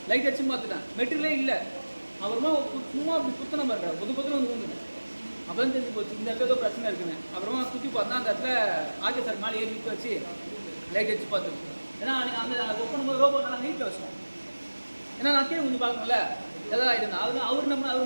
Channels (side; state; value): both; inverted; correlation -1.00